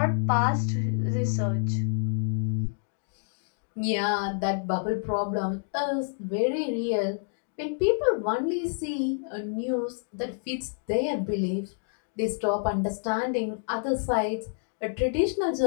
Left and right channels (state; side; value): silent; right; digital silence